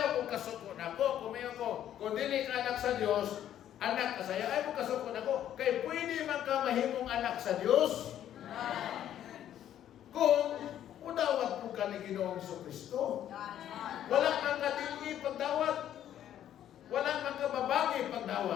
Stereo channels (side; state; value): right; quieter; 11.0 dB